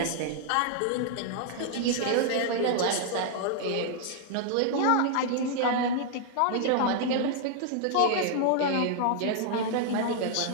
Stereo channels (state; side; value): different; both; correlation 0.00